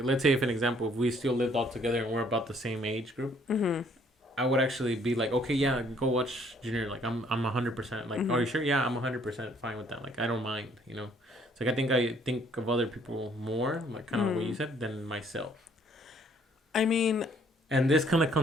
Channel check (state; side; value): normal; both; correlation 0.63